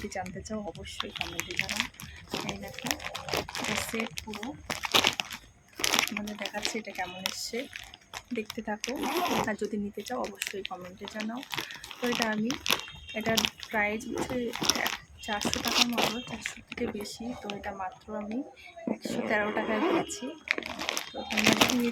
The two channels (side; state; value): both; identical; correlation 1.00